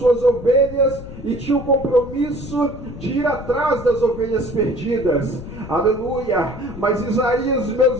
ovelhas e tinha o compromisso de ir atrás das ovelhas perdidas. Aleluia. Mas Isaías, meus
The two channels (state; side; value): noise; left; rumble, 12 dB below the sound